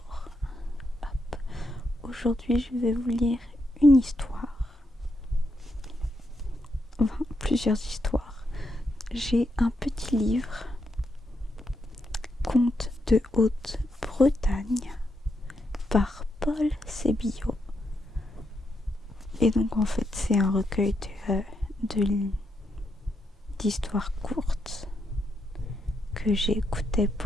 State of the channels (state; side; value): normal; both; correlation 0.81